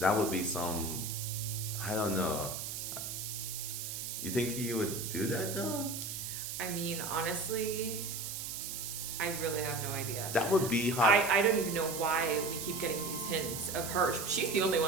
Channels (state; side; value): noise; right; hiss, 5 dB below the sound